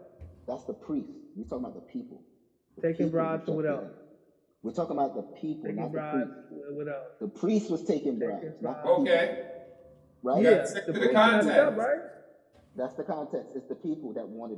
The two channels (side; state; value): both; identical; correlation 1.00